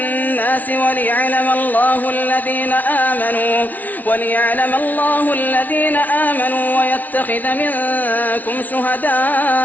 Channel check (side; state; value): right; late; 0.077 ms